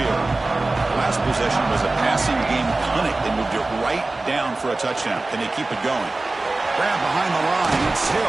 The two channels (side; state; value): left; quieter; 3.1 dB